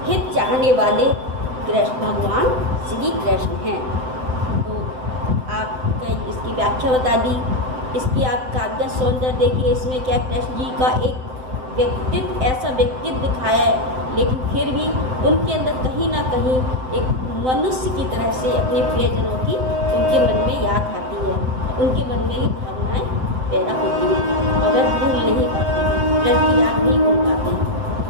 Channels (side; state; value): left; late; 7.8 ms